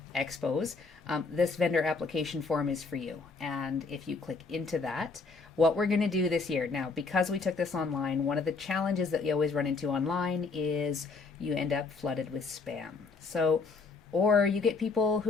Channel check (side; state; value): right; quieter; 4.3 dB